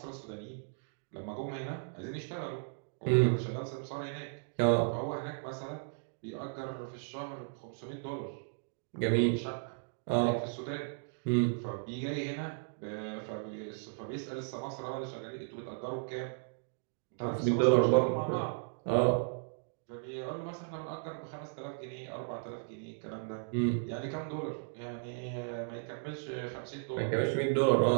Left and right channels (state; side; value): silent; left; digital silence